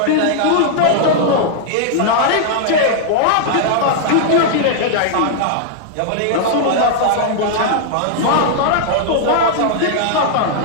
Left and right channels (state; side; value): different; both; correlation -0.01